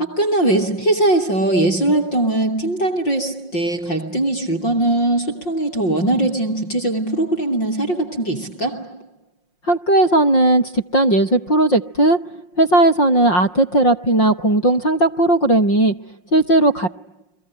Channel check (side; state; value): right; late; 5.6 ms